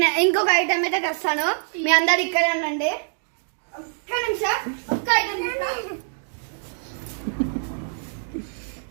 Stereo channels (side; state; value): left; silent; digital silence